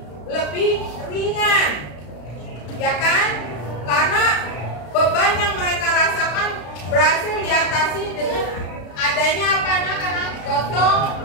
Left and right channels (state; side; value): late; right; 33 ms